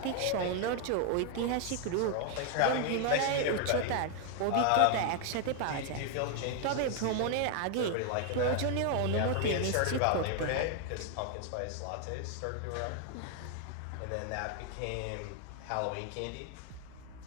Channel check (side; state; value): both; different; correlation 0.00